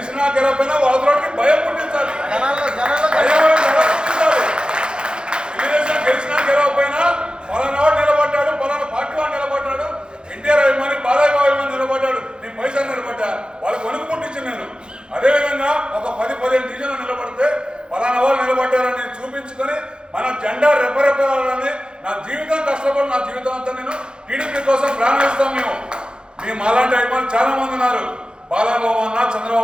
గెలవైనా వాళ్ళకి భయం పుట్టించాలి. తెలుగుదేశం గెలిచినా గెలవకపోయినా పలానా వాడు నిలబడ్డాడు, పలానా పార్టీ వాడు నిలబడ్డాడు, ఎన్టీఆర్ అభిమాని బాలయ్య అభిమాని నిలబడ్డాడు, నేను పైసలు నిలబడ్డా, వాళ్ళకి వణుకు పుట్టించింది నేను. అదేవిధంగా ఒక 10-15 డివిజన్లు నిలబడితే పలానా వాళ్ళు నిలబడ్డారని చూపించుకొని మన జెండా రెపరెపాలని నా జీవితం కష్టపడి నా జీవితం అంతా నేను టీడీపీ కోసం ప్రాణం ఇస్తాం. మేము అలాంటి అభిమానులు చాలా మంది ఉన్నారు. బాలబాబు అన్న,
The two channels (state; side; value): late; left; 0.050 ms